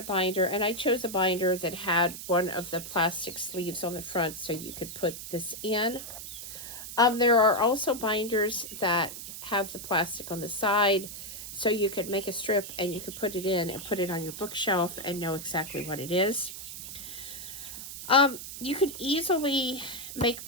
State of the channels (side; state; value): right; noise; hiss, 10 dB below the sound